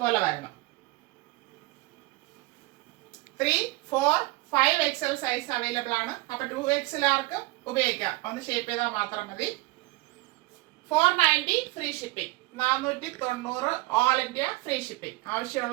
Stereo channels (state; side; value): quieter; left; 22.1 dB